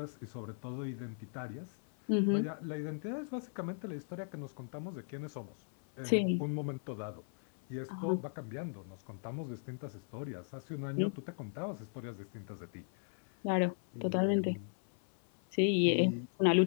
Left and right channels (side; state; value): right; silent; 53 dB below the other